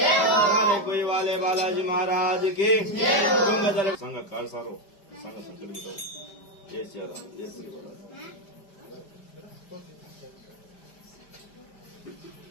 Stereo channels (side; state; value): right; late; 5.1 ms